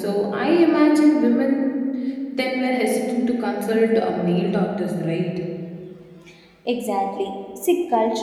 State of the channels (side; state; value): both; identical; correlation 1.00